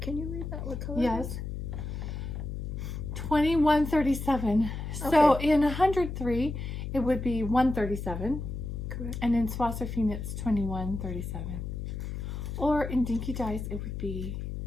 Can you read that? What color? Yes. 2137. So in 103, it would be 137. Correct. And in Swatzer Fiend, it's 2137. Or in Dinky Dyes, it would be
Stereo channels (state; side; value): noise; left; hum, 5 dB below the sound